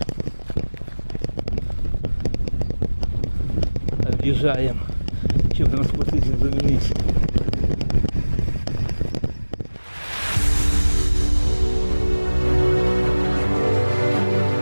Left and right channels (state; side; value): inverted; both; correlation -1.00